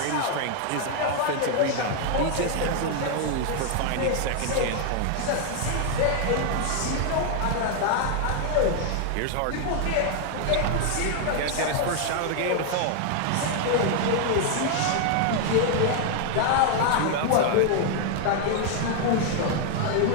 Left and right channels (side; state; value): both; different; correlation 0.00